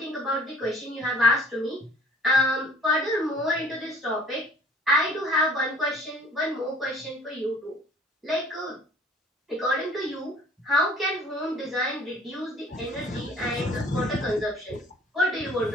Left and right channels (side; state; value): both; normal; correlation 0.52